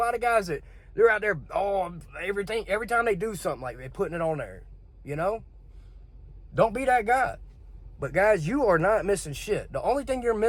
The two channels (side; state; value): both; identical; correlation 1.00